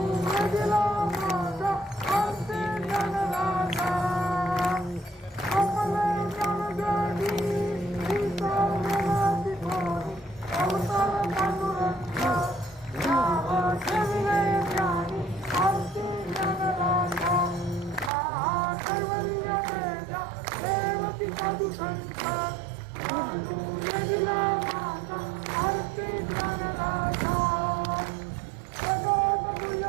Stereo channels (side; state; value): left; drops out; at 18.1 s